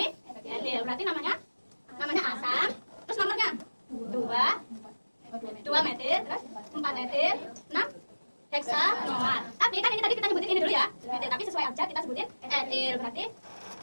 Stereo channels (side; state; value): both; inverted; correlation -1.00